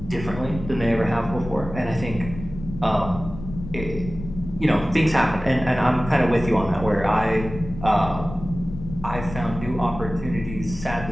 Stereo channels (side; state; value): left; noise; rumble, 11 dB below the sound